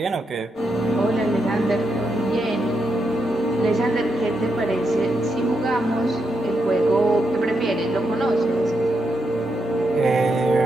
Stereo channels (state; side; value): normal; both; correlation 0.82